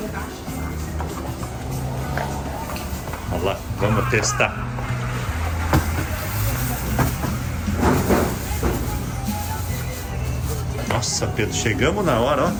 Olha lá, vamos testar. Nossa, Pedro, chegamos na hora, ó.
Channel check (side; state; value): both; identical; correlation 1.00